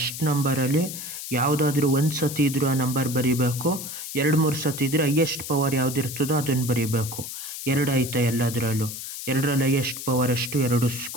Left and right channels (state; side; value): noise; left; hiss, 8 dB below the sound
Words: ನಂಬರಲ್ಲಿ ಯಾವುದಾದ್ರೂ ಒಂದು ಸತಿ ಇದ್ರೂ ಆ ನಂಬರ್ ಬರೀಬೇಕು. 2-3 ಸತಿ ಇದ್ರೆ ಹೈಯೆಸ್ಟ್ ಪವರ್ ಯಾವುದಿರ್ತದೋ ಅದನ್ನು ಬರೀಬೇಕು. 2 ಐತೆ ಎಲ್ಲದರಲ್ಲೂ. 2ರಲ್ಲಿ ಹೈಯೆಸ್ಟ್ ಪವರ್ ಎಷ್ಟು, 2